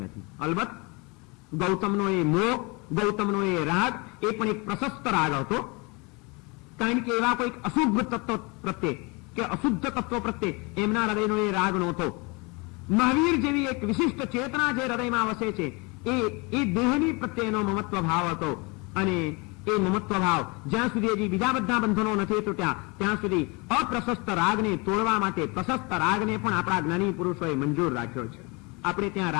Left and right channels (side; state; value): right; quieter; 28.4 dB